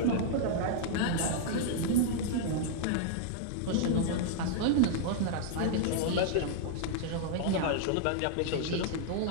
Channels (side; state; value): both; different; correlation -0.01